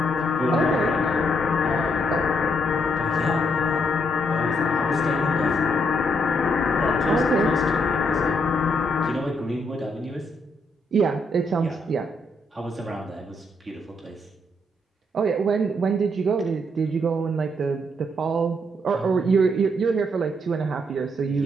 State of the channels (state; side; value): normal; both; correlation 0.74